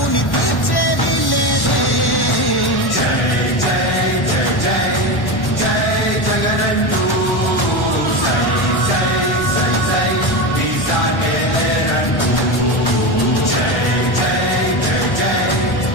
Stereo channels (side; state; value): right; late; 1.1 ms